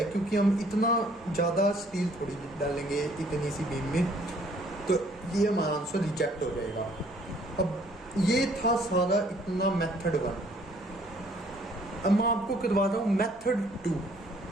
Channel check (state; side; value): normal; both; correlation 0.61